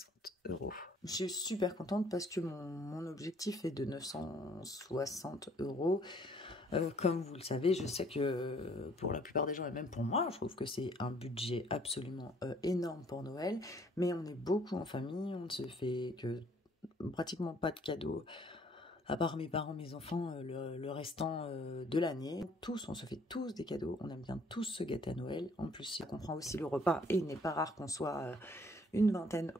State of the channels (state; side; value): normal; both; correlation 0.60